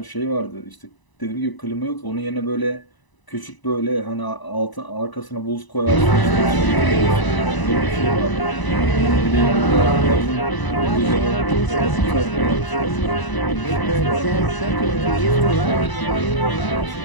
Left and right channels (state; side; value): late; right; 1.0 ms